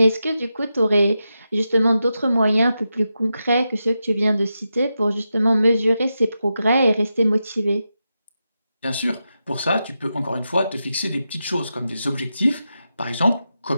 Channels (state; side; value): inverted; both; correlation -0.88